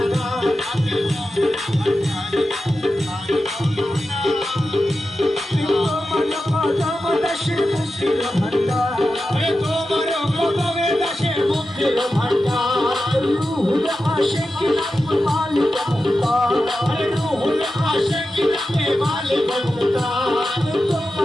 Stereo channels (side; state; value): both; normal; correlation 0.92